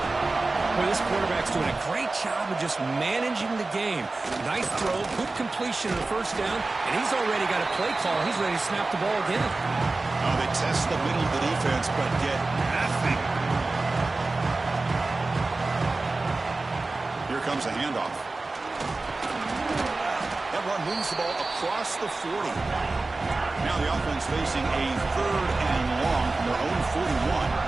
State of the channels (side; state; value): left; quieter; 3.4 dB